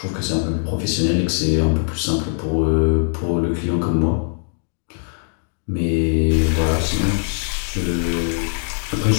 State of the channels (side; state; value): right; silent; 61 dB below the other